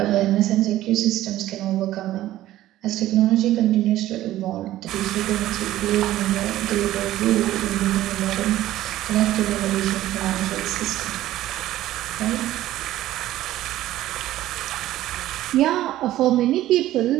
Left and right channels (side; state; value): left; quieter; 14.5 dB